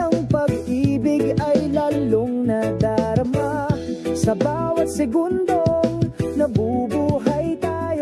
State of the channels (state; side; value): identical; both; correlation 1.00